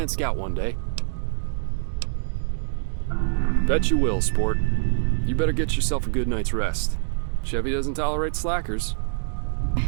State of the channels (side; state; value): left; silent; digital silence